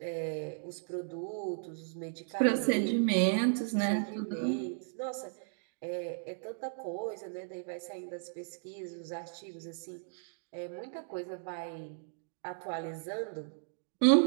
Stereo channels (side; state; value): left; silent; digital silence